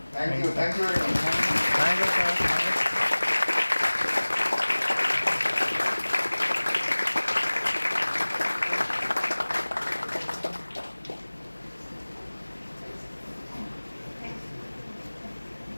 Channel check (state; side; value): inverted; both; correlation -1.00